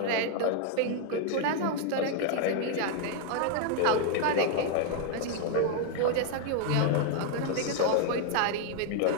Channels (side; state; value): both; different; correlation 0.00